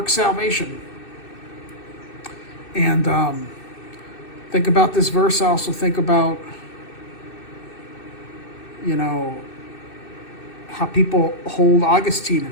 salvation. And think about this verse. I also think about, how people hold Augustine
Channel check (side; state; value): right; late; 2.6 ms